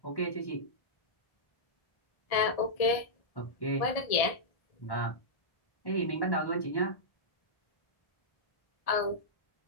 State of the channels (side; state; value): right; late; 1.7 ms